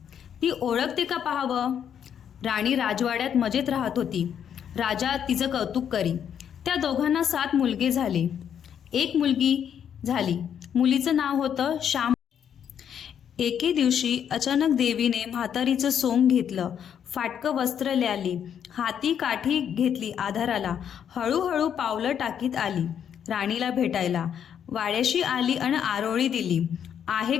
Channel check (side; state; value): right; quieter; 8.7 dB